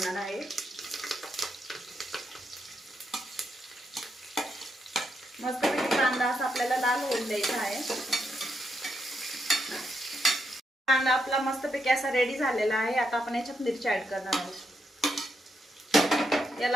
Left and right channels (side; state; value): both; normal; correlation 0.81